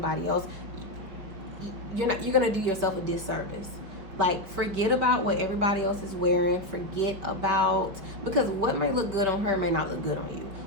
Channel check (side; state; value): left; late; 5.4 ms